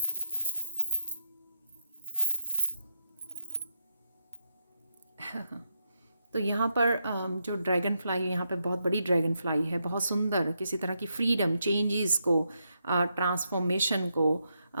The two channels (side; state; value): both; inverted; correlation -0.82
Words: तो यहाँ पर जो ड्रैगन फ्लाई, यहाँ पे बहुत बड़ी ड्रैगन फ्लाई है, बहुत सुंदर, किसी तरह की फ्रीडम, चेंजेस को, ट्रांसफॉर्मेशन को,